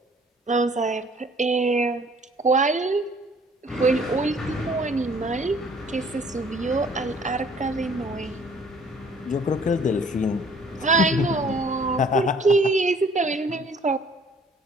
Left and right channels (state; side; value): normal; both; correlation 0.56